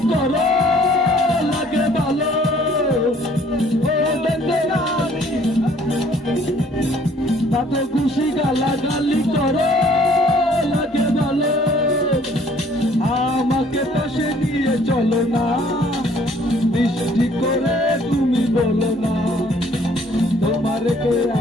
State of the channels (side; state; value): both; normal; correlation 0.59